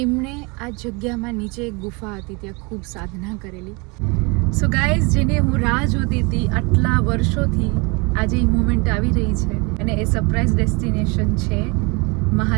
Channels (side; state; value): left; quieter; 29.2 dB